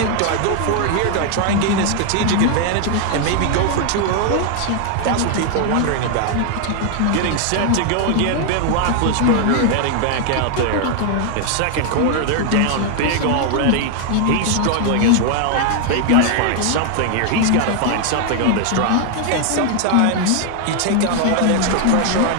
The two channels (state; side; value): different; both; correlation 0.00